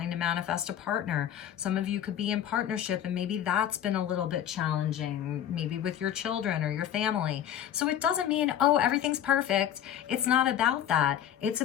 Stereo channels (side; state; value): right; quieter; 10.4 dB